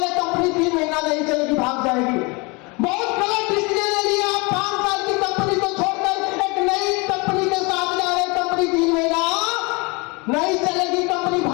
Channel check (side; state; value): right; quieter; 28.0 dB